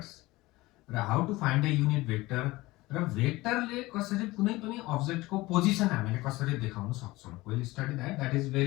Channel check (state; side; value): quieter; right; 19.9 dB